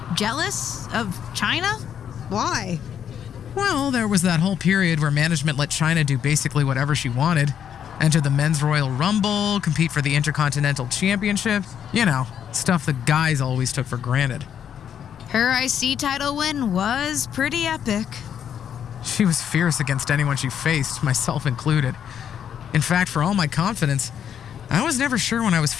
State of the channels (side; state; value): right; quieter; 8.8 dB